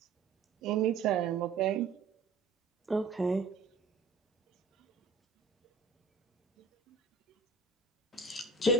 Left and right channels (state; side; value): quieter; left; 4.1 dB